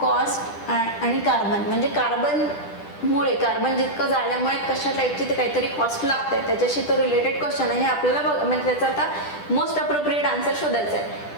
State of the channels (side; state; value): right; late; 10 ms